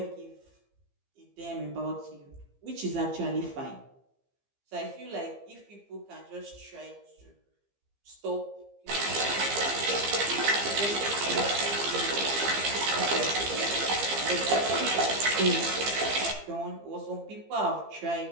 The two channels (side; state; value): left; late; 15 ms